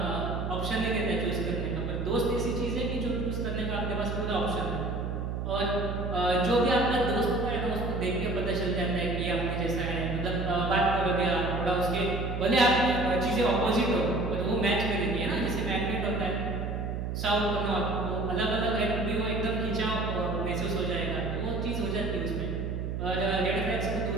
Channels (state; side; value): noise; right; hum, 3 dB below the sound